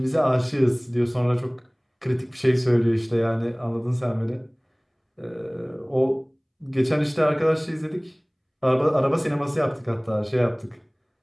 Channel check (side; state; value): both; identical; correlation 1.00